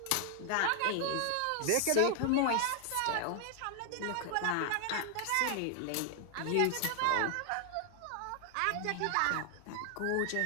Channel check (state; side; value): different; both; correlation 0.00